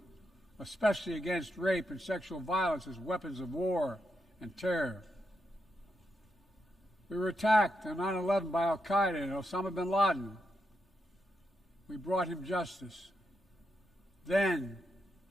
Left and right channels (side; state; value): both; normal; correlation 0.84